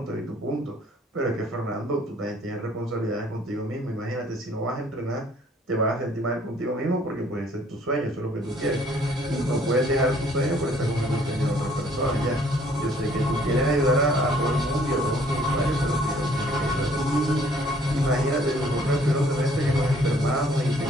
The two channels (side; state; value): both; normal; correlation 0.60